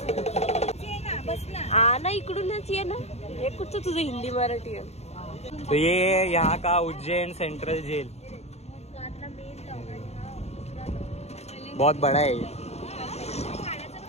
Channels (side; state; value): right; late; 0.31 ms